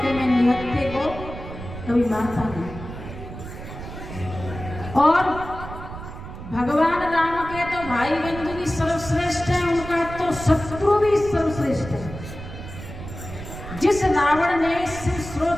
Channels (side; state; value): right; noise; rumble, 11 dB below the sound